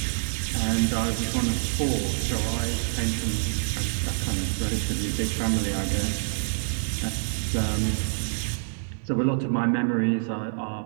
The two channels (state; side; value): silent; left; digital silence